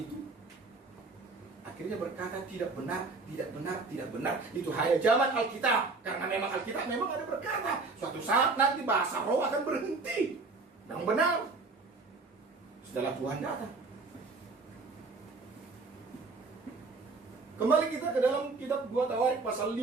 akhirnya berkata tidak benar. Itu hanya zaman Alkitab. Karena memang Alkitab memang ada berkata, suatu saat nanti bahasa roh akan berhenti. Yang benar, setelah Tuhan datang. Kembali kita ke dalam kitab 2 Tawarik pasal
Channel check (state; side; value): quieter; left; 3.9 dB